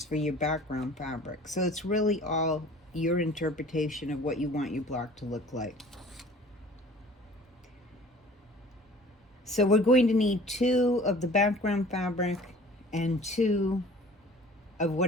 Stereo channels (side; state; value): both; normal; correlation 0.47